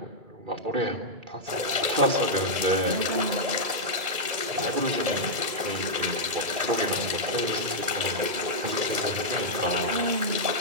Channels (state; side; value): late; left; 2.3 ms